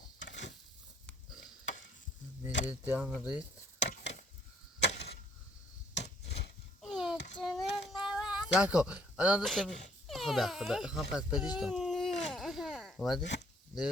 میدید دیان رید ساکن الان داشتم خدا خواهم پس بدیش دام اومده؟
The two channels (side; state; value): both; normal; correlation 0.64